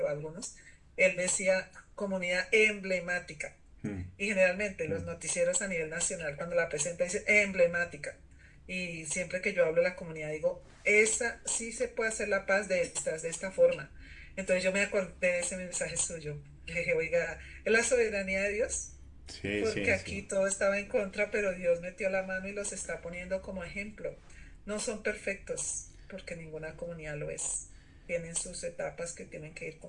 algunos, él decía comunidad emblemática. Mm. Y generalmente los Mm. noticieros a nivel nacional, cuando la presenta, dice emblemática. Y siempre que yo hablo de la comunidad, digo, esa sí se puede hacer la paz de esta forma. Entonces yo me acordé de ese mensaje suyo. Le dije, oiga, es la soberanía de Dios, Sí, porque sí, sí. aquí todo estaba en contra, pero Dios metió la mano y los está poniendo como ejemplo. No son perfectos, porque ninguna comunidad lo es. Tienen sus etapas que tienen que ir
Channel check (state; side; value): identical; both; correlation 1.00